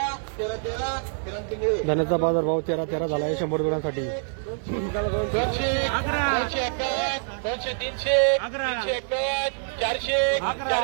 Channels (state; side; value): silent; left; 58 dB below the other